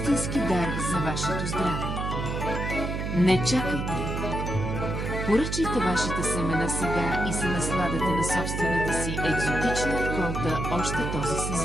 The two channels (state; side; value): noise; right; hum, 3 dB below the sound